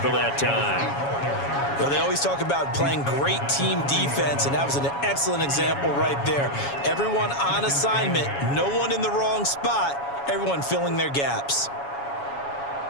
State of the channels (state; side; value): late; right; 7.2 ms